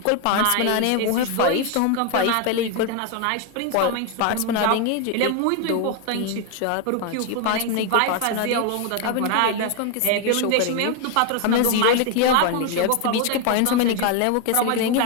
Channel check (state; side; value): different; both; correlation 0.01